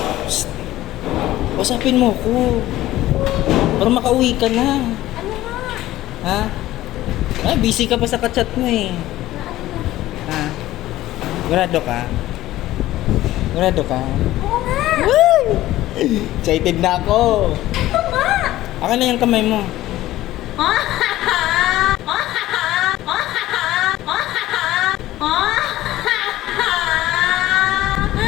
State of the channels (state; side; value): quieter; right; 15.4 dB